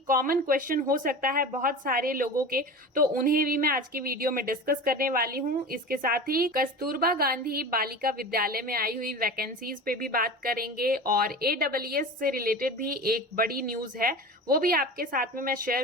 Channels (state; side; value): normal; both; correlation 0.32